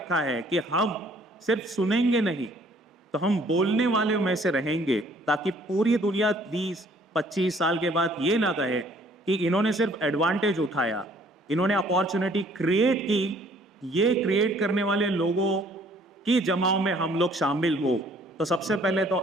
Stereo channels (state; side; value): normal; both; correlation 0.59